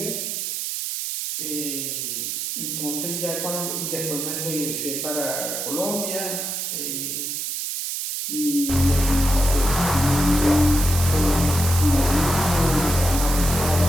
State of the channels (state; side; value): noise; right; hiss, 3 dB below the sound